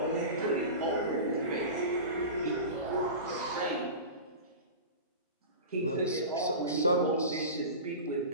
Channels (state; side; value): inverted; both; correlation -0.30